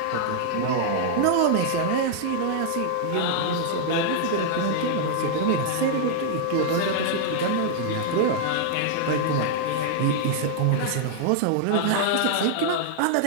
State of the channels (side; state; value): both; different; correlation -0.01